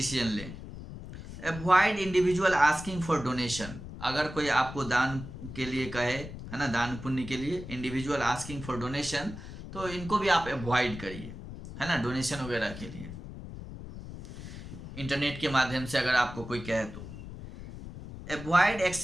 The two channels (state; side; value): noise; left; rumble, 11 dB below the sound